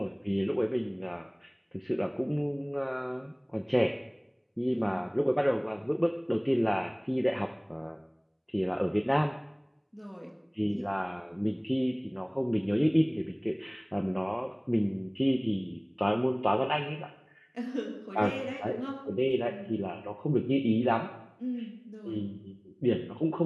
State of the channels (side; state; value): both; identical; correlation 1.00